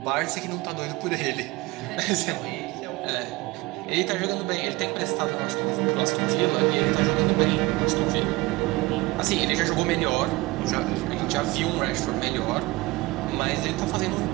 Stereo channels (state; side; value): quieter; left; 21.4 dB